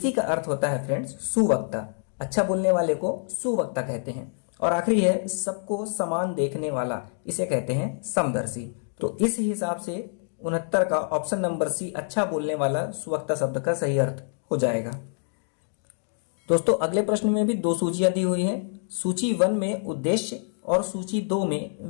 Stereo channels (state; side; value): silent; right; digital silence